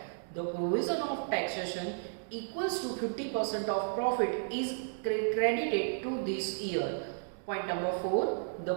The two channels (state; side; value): silent; left; digital silence